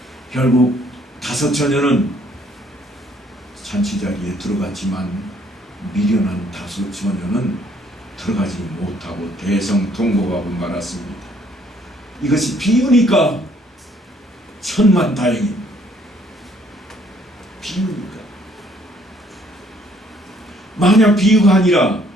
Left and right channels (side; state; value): both; normal; correlation 0.64